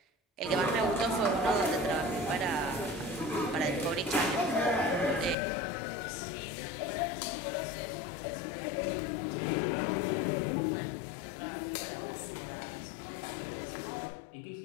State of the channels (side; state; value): right; drops out; at 5.4 s